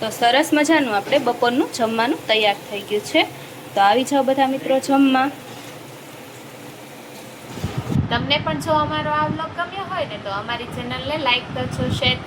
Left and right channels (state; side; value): identical; both; correlation 1.00